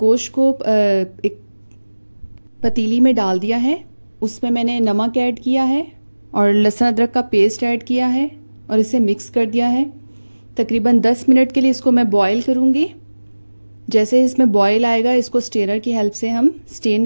को एक पतीली में डाल दिया है। उसमें मैंने नमक ऐड किया है और लहसुन अदरक का पेस्ट ऐड किया है और इसे मिक्स कर दिया है। तकरीबन 10 मिनट के लिए इसको मैं बॉईल करूँगी। जैसे इसमें बॉईल आएगा इसको स्टेनर की हेल्प से हम स्टेन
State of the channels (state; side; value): inverted; both; correlation -1.00